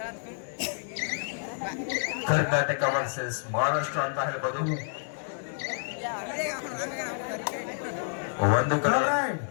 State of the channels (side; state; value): right; silent; 58 dB below the other